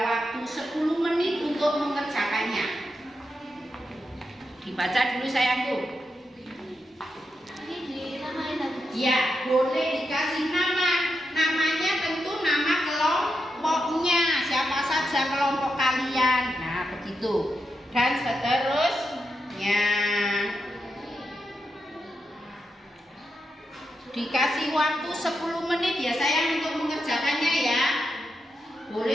waktu 10 menit untuk mengerjakannya. Dibaca dulu sayangku. Ya, boleh dikasih nama. Namanya tentu nama kelompoknya. Siapa saja kelompok kalian. Nah, begitu. Dan seterusnya. Dikasih waktu 10 menit ya sayang untuk mengerjakannya ya.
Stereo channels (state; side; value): normal; both; correlation 0.86